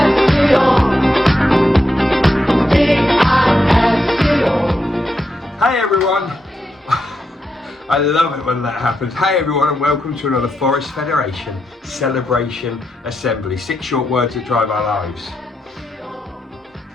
Hi everyone. I love it when that happens. Hi everyone and welcome to another Forest Federation Celebration Assembly. 6 short words that drive our lives.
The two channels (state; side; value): normal; both; correlation 0.84